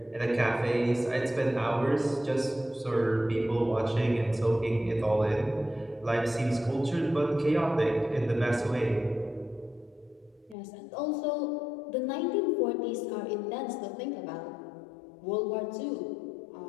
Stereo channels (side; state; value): right; drops out; at 10.6 s